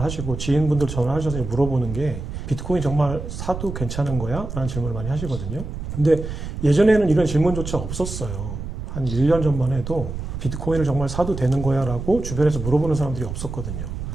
하시고 지인분들 전화하셔서 물어보는 게 비트코인 정말 사도 괜찮은 거야? 라는 질문을 많이 하시거든요. 근데 예전에는 이런 질문조차 없었어요. 한 1년 전만 해도 비트코인을 정말 사도 되는 거야? 라고 주변에서 물어보는 사람들이 없었거든요.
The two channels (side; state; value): right; noise; rumble, 7 dB below the sound